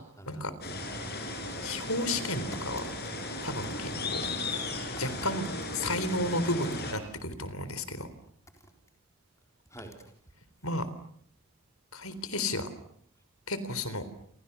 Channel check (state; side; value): normal; both; correlation 0.10